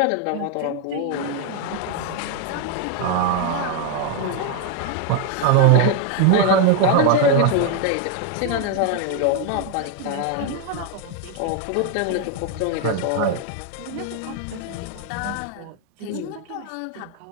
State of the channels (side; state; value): both; different; correlation 0.01